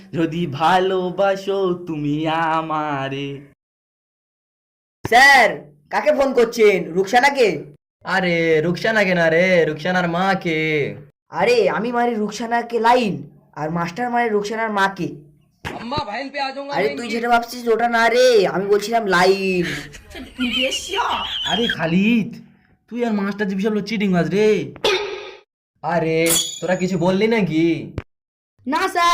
যদি ভালোবাসো তুমি আমারে। স্যার কাকে ফোন করছেন? রুকসানাকে? আরে রুকসানাকে না রে, রুকসানার মাকে। আরে আমি মারি রুকসানাকে লাইন, আর মাস্টার মারে রুকসানার মাকে। আরে তুই যেটা ভাবছিস ওটা না রে, আমি বলছিলাম লাইন। আরে খালিদ, তুই আর মাস্টার জি বিশাল চিটিং বাজ রে। আরে তোরা কিছু বললি নাকি? না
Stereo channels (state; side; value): identical; both; correlation 1.00